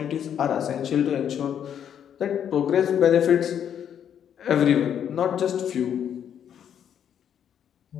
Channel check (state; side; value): quieter; right; 9.0 dB